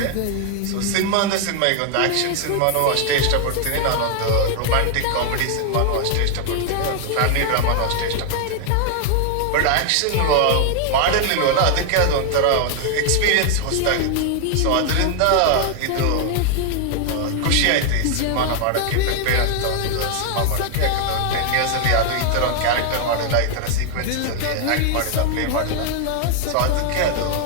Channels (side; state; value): both; different; correlation 0.00